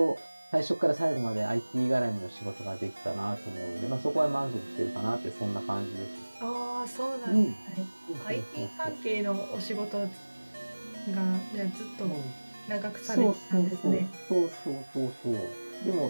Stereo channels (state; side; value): inverted; both; correlation -1.00